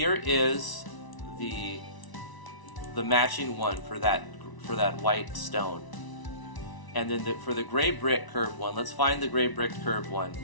is the matching one for that white stone. And then for the gray brick curved one, let's find the gray brick curved one.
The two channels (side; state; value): right; late; 1.0 ms